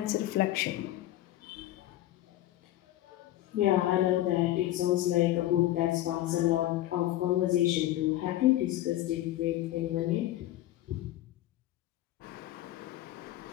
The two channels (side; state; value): right; quieter; 14.6 dB